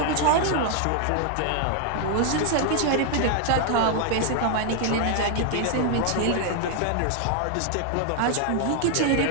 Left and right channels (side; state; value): both; different; correlation 0.00